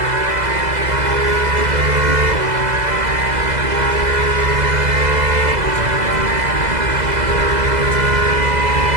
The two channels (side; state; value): left; late; 2.0 ms